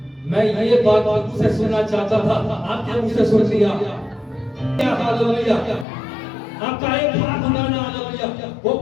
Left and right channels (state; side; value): drops out; right; at 5.9 s